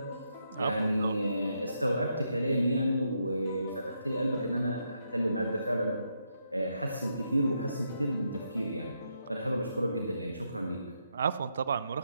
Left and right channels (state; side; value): inverted; both; correlation -0.80